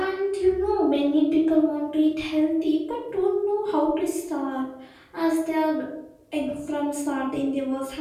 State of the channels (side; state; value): both; identical; correlation 1.00